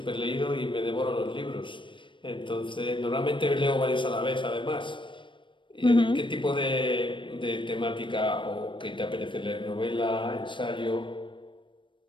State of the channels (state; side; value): late; right; 0.24 ms